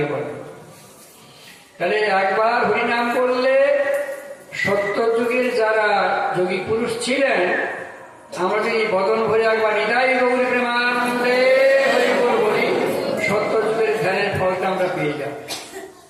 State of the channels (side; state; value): both; identical; correlation 1.00